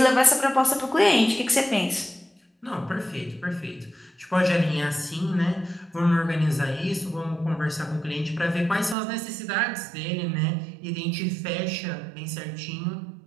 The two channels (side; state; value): left; drops out; at 9.0 s